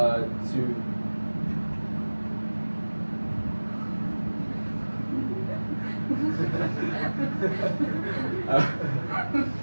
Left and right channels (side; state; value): both; inverted; correlation -1.00